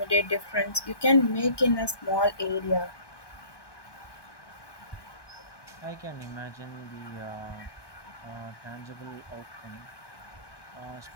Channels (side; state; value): right; late; 1.2 ms